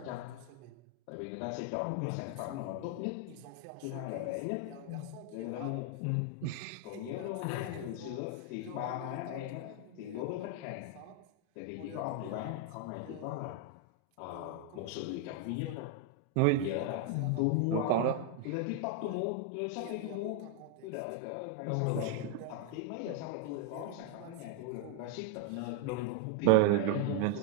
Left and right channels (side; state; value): both; different; correlation 0.00